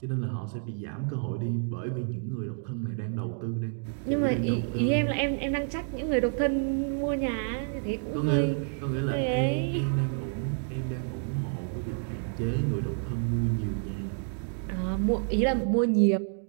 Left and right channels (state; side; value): silent; left; 57 dB below the other